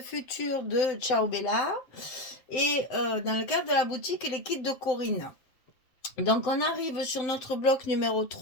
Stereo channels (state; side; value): late; right; 7.8 ms